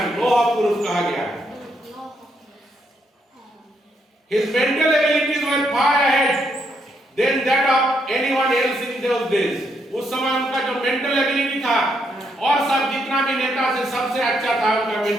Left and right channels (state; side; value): normal; both; correlation 0.76